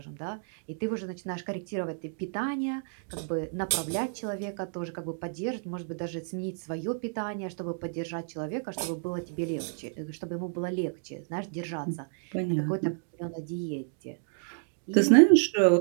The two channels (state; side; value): silent; left; digital silence